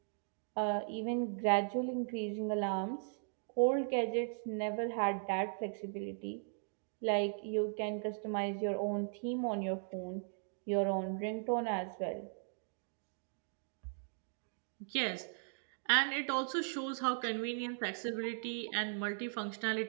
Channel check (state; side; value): silent; left; digital silence